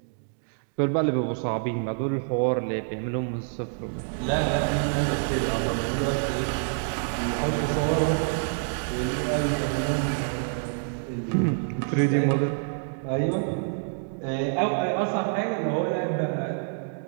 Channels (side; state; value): left; silent; digital silence